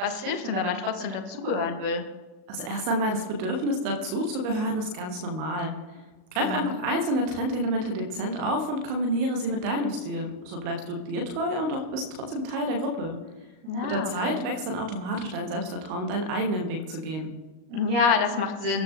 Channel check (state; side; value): late; left; 38 ms